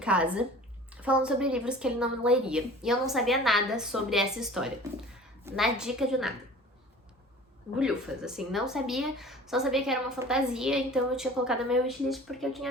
falando sobre livros que ele não leria. E eu não sabia nada sobre essa história. Na dica de nada. Bulhufas, assim, não sabia, só sabia que era uma fantasia, então eu tinha colocado na minha wishlist porque eu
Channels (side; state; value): both; normal; correlation 0.43